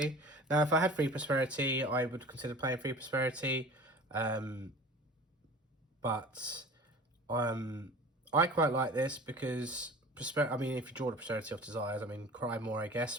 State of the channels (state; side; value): normal; both; correlation 0.41